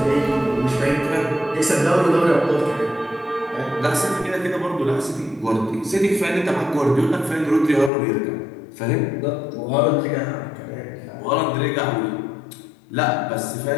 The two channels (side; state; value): right; drops out; at 7.9 s